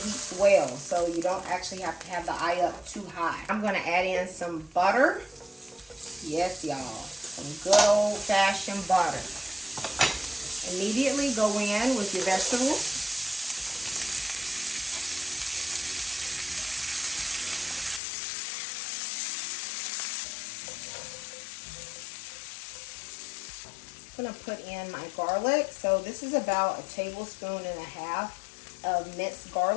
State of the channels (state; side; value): drops out; right; at 18.0 s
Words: well, so you don't actually have to have the eye up too high. I'm going to add in some butter. Yes, y'all, some good old-fashioned butter. Immediately go in with your vegetables. I'm going to put in my garlic. So this is about 1.5 tablespoons of minced